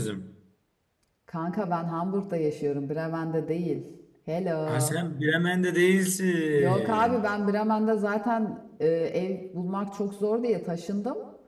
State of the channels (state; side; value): identical; both; correlation 1.00